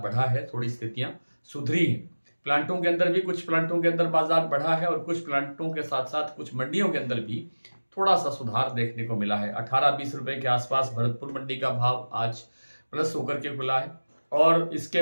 बढ़ा है, थोड़ी स्थितियां सुधरी हैं। प्लांटों के अंदर भी कुछ प्लांटों के अंदर बाजार बढ़ा है और कुछ प्लांटों के साथ साथ कुछ मंडियों के अंदर भी थोड़ा सा सुधार देखने को मिला है। 18-20 रुपए के आसपास भरतपुर मंडी का भाव आज प्लस होकर के खुला है। और इसके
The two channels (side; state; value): both; inverted; correlation -1.00